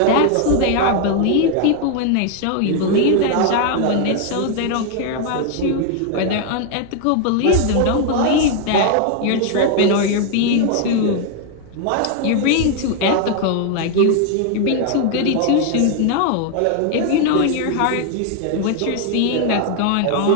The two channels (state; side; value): different; both; correlation 0.00